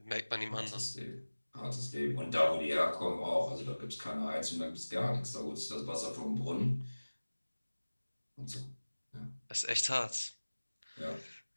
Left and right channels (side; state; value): both; inverted; correlation -1.00